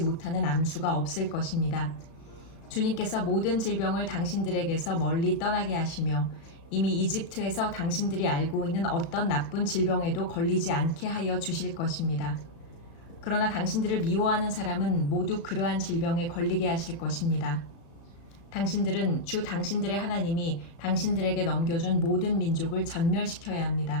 못하는 암수가 없을 것입니다. 주님께서 모든 질병을 당신들에게서 멀리 떠나게 하시며 이미 이집트에서 당신들이 알고 있는 어떤 나쁜 질병에도 걸리지 않게 하여 주실 것입니다. 그러나 당신들을 미워하는 사람은 모두 그러한 질병에 걸리게 하실 것입니다. 당신들은 주 당신들의 하나님이 당신들에게 넘겨준 모든 민족을 전멸시켜야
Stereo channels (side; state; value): right; late; 35 ms